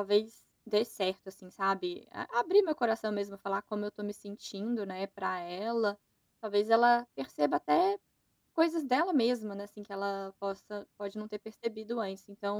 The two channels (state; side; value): identical; both; correlation 1.00